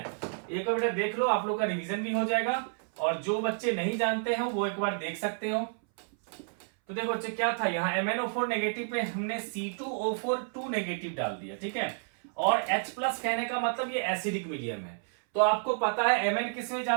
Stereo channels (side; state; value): left; silent; 58 dB below the other